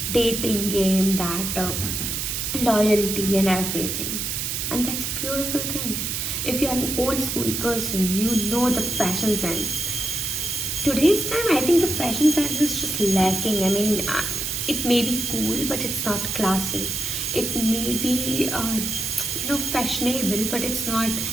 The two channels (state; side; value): noise; right; hiss, 2 dB below the sound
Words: dating game, that loyalty and everything. And that's a beautiful thing. If you are an old school person, you know the fashion sense. Today's time, I think the fashion sense is just lacking. I mean, it may be cool, but it's not classy. It may be, fashionable, but it's not